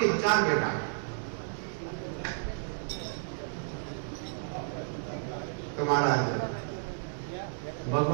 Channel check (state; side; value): silent; left; digital silence